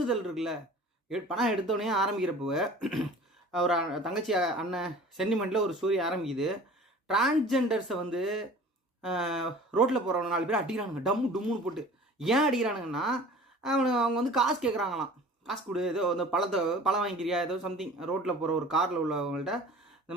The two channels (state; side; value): normal; both; correlation 0.44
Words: இருக்குல்ல. படம் எடுத்தோடனே ஆரம்பிக்கிறப்போ ஒரு தங்கச்சி அண்ணன் சென்டிமெண்ட்டில் ஒரு ஸ்டோரி ஆரம்பிக்குது. டிரான்ஸ்ஜெண்டர்ஸை வந்து ரோட்டில் போகிறவங்க 4 பேர் அடிக்கிறானுங்க, டம்முன்னு போட்டு. ஏன் அடிக்கிறானுங்கன்னா, அவங்க வந்து காசு கேட்குறாங்களாம். காசு கொடு, ஏதோ அந்த பழம் வாங்கிக்கிறியா, ஏதோ சம்திங். ரோட்டில் போகிற ஒரு காரில் உள்ளவங்கள்ட்ட இந்த